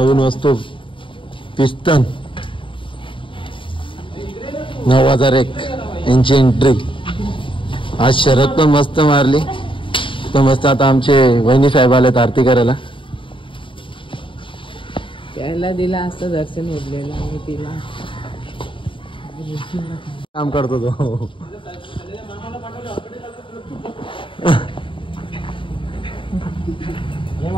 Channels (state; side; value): late; right; 0.25 ms